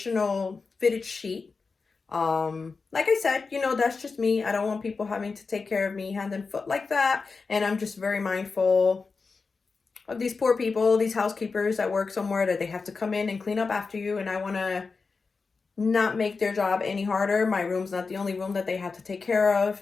fitted sheet. Like I said, you know, that's just me. I don't want people having to take care of me hand and foot like that. And I'm just very mindful of these poor people, these housekeepers that work somewhere that they have to come in and clean up after you. And I want to not make their job any harder. My room's not the only room that they have to take care of.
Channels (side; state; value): right; quieter; 4.5 dB